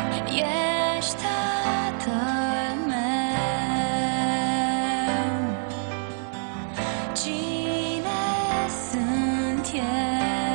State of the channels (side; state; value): left; silent; digital silence